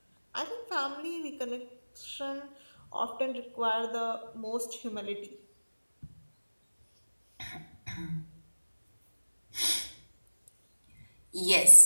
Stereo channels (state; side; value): inverted; both; correlation -1.00